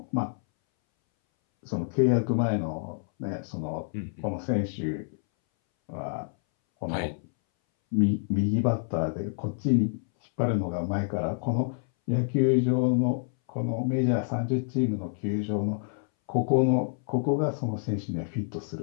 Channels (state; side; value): silent; right; 59 dB below the other